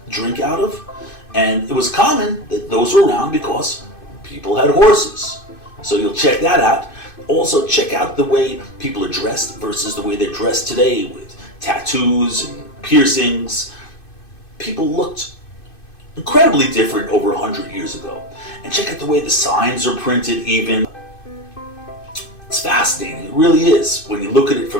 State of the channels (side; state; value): right; late; 2.5 ms